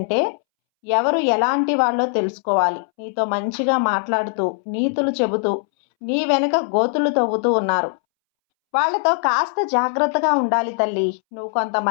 ఎవరు ఎలాంటి వాళ్ళో తెలుసుకోవాలి. నీతో మంచిగా మాట్లాడుతూ, నీతులు చెబుతూ, నీ వెనక గోతులు తవ్వుతూ ఉన్నారు. వాళ్ళతో కాస్త జాగ్రత్తగా ఉండాలి తల్లి. నువ్వు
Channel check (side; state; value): right; silent; 65 dB below the other